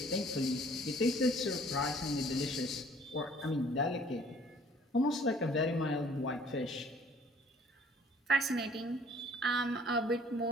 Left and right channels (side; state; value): both; normal; correlation 0.55